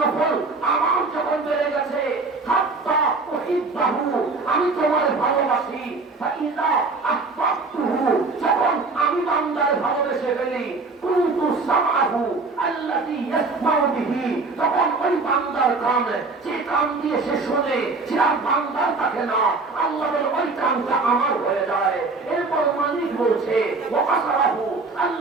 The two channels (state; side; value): quieter; left; 3.8 dB